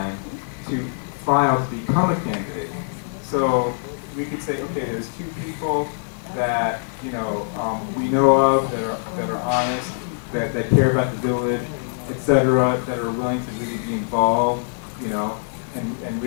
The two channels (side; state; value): right; silent; 60 dB below the other